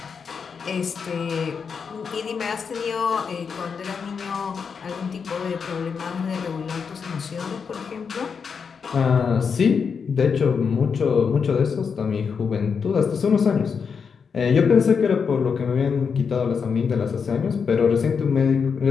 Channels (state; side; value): quieter; right; 6.0 dB